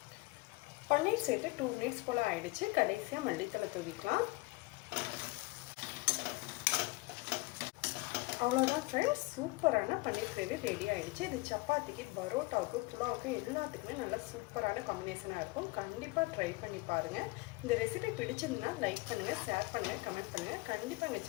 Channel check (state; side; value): quieter; right; 24.0 dB